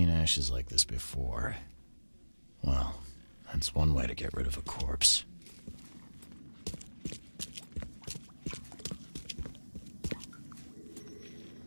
ashes like this before. Well, that's one way to get rid of a corpse.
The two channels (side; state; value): both; inverted; correlation -1.00